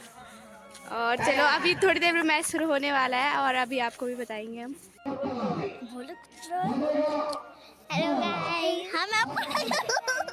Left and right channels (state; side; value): identical; both; correlation 1.00